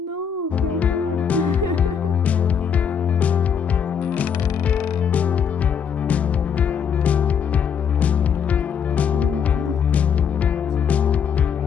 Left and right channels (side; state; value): right; quieter; 7.3 dB